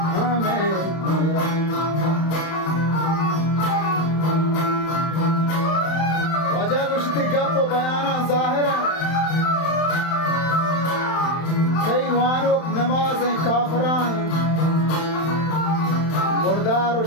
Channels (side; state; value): right; late; 31 ms